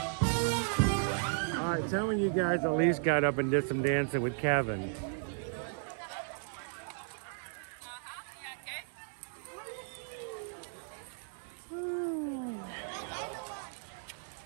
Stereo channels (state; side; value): silent; left; 54 dB below the other